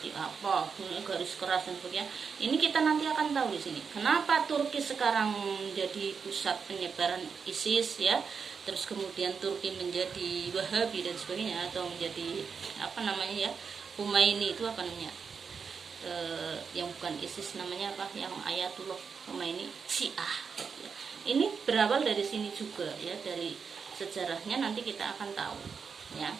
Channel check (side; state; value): left; quieter; 5.8 dB